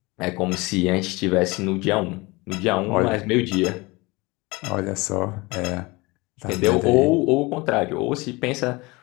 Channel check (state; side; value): quieter; right; 24.0 dB